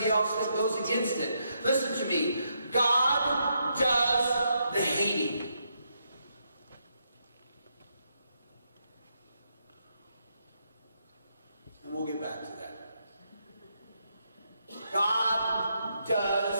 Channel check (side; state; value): both; inverted; correlation -0.79